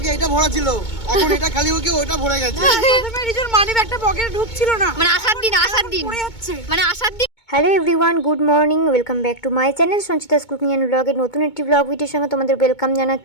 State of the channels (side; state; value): right; late; 2.2 ms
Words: এটা ভরা ছিল, এখন এটা খালি হয়ে ওটা ভরে গেছে। প্রথমে রিজুর মানি ব্যাগটা পকেটে ঢুকছিল না, মানে আসার দিন পড়ে যাচ্ছে। মানে আসার দিন। Hello everyone, good morning, welcome back to my channel Sanchita's cooking and ব্লগের নতুন একটি ব্লগ ভিডিওর সঙ্গে তোমাদের ওয়েলকাম